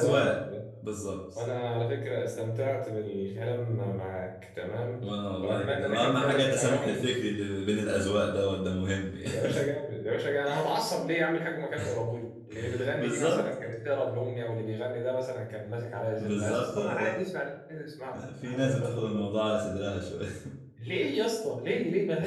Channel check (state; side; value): identical; both; correlation 1.00